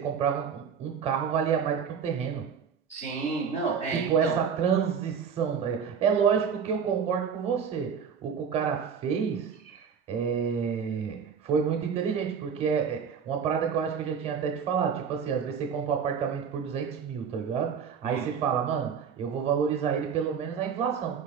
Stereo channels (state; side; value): quieter; left; 6.8 dB